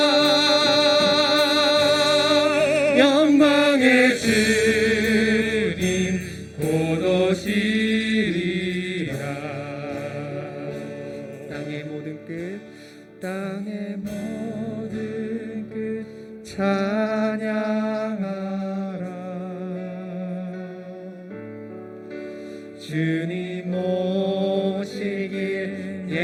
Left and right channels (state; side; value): identical; both; correlation 1.00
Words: 영광의 주님 곧 오시리라 땅의 모든 끝 땅의 모든 끝 찬양하라 주님 오시길